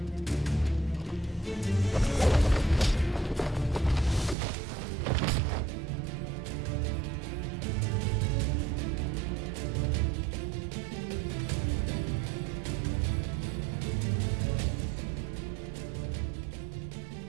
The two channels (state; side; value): drops out; left; at 4.4 s